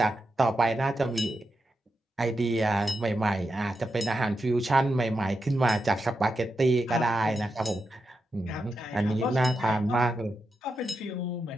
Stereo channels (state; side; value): normal; both; correlation 0.87